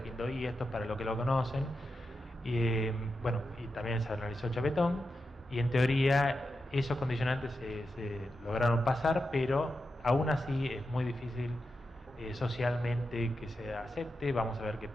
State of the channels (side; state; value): both; normal; correlation 0.88